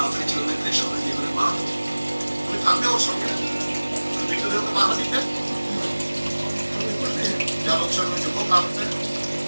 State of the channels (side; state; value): both; inverted; correlation -1.00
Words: চলে গেলে সবাই নিয়ে করে মারা দেবো। তুমি থাকবে ওর সঙ্গে, ভিতরে ওকে বাধা দিতে যা লোকসান হয়েছে হোক, আর